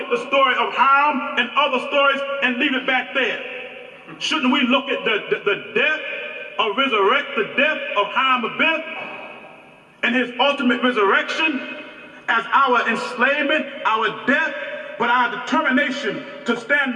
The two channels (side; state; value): both; identical; correlation 1.00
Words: the story of Ham and other stories and leave it back there? Shouldn't we look at the death or resurrect the death of Ham Abith and his ultimate resurrection as our enslavement, our death, but our determination to